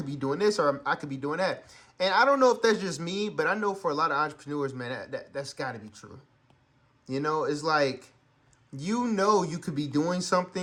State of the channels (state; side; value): identical; both; correlation 1.00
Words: be doing this, or I could be doing that. And I don't know if that's just me, but I know for a lot of entrepreneurs, man, that's got to be true. It's like, you could be doing